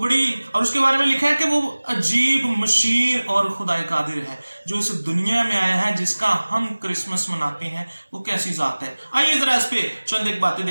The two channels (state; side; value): inverted; both; correlation -1.00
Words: और उसके बारे में लिखा है कि वो अजीब, मशीर और खुदाए कादिर है, जो इस दुनिया में आया है, जिसका हम क्रिसमस मनाते हैं। वो कैसी जात है, आइए जरा इस पे चंद एक बातें